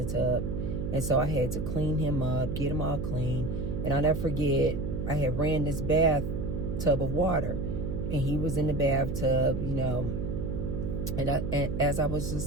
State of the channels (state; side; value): noise; right; hum, 3 dB below the sound